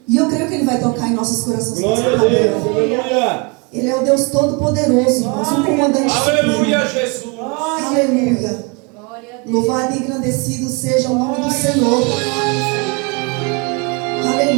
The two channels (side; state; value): left; quieter; 31.4 dB